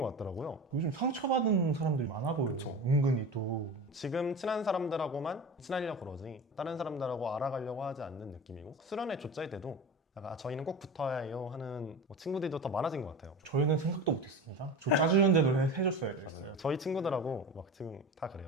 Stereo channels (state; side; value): normal; both; correlation 0.30